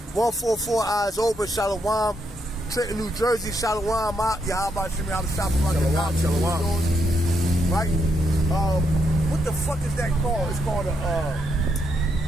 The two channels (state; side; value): normal; both; correlation 0.78